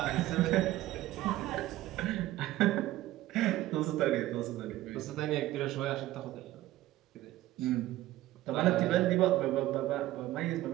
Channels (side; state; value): left; quieter; 15.6 dB